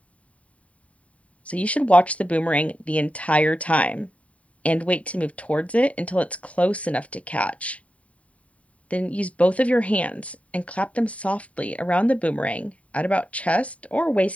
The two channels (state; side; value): late; right; 0.067 ms